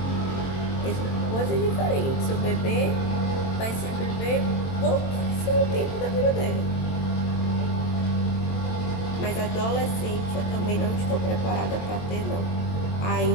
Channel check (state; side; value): late; right; 22 ms